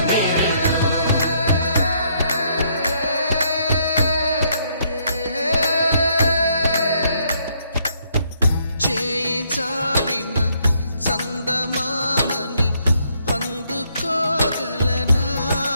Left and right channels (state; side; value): inverted; both; correlation -0.71